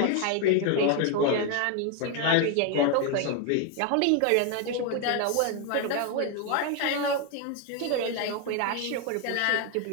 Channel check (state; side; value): different; both; correlation 0.01